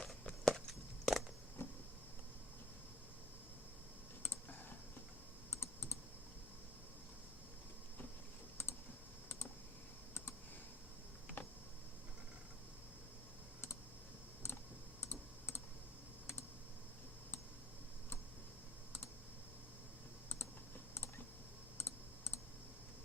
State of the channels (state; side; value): normal; both; correlation 0.55